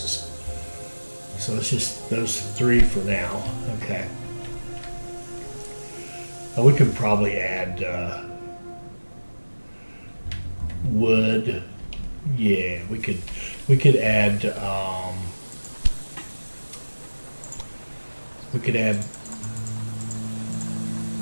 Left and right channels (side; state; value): both; inverted; correlation -1.00